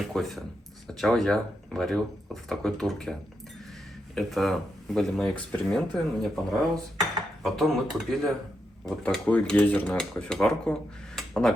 кофе. Сначала я варил вот в такой турке. Это были мои эксперименты, мне понравилось. Потом мы купили вот такую гейзерную кофеварку. Она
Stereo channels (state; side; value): normal; both; correlation 0.83